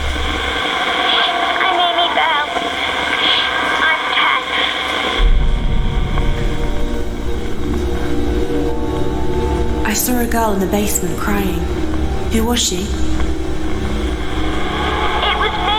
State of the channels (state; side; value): identical; both; correlation 1.00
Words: I'm Amy Bell. I'm 10. I saw a girl in the basement crying. Who was she? It was